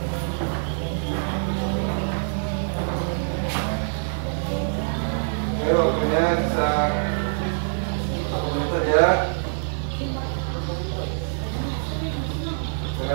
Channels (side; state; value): left; silent; 62 dB below the other